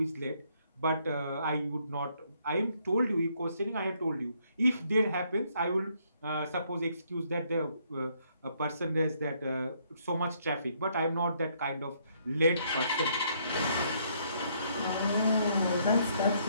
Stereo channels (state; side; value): inverted; both; correlation -0.70